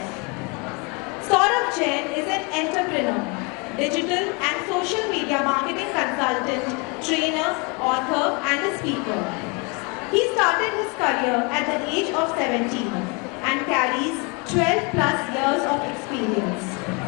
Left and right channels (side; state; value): right; quieter; 30.9 dB